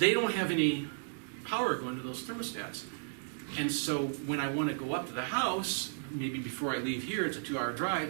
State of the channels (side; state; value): left; silent; digital silence